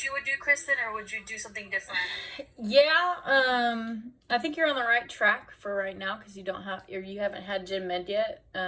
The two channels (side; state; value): both; identical; correlation 1.00